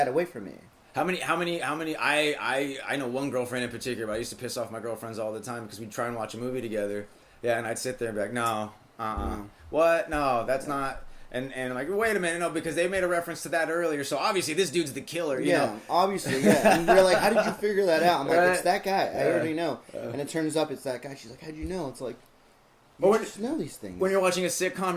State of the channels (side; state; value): both; identical; correlation 1.00